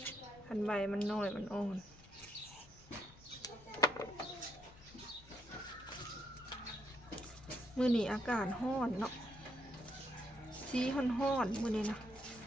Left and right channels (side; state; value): both; normal; correlation 0.75